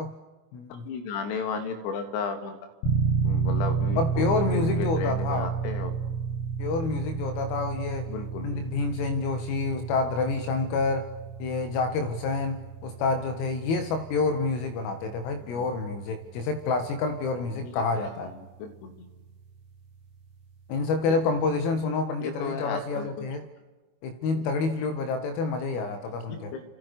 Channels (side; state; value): right; late; 25 ms